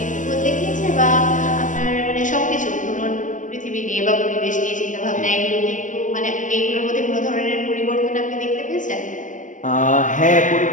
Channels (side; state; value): right; late; 0.37 ms